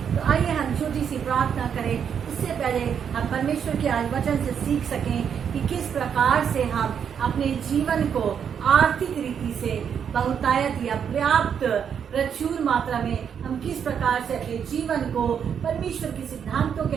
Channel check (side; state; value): left; quieter; 7.7 dB